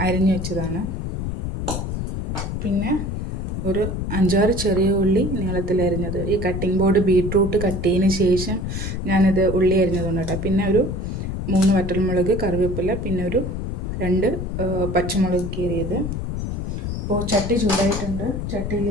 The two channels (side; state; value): left; noise; rumble, 3 dB below the sound